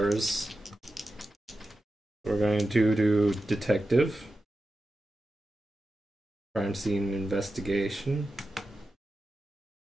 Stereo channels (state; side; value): normal; both; correlation 0.92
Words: We're going to do detective. Crime scene investigation.